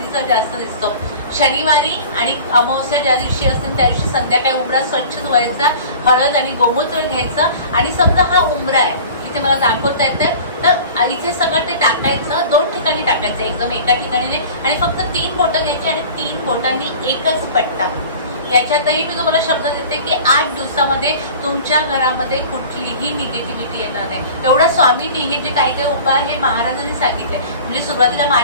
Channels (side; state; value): both; inverted; correlation -0.41